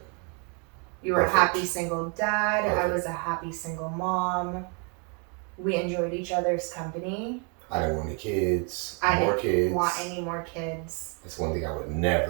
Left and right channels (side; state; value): left; quieter; 36.7 dB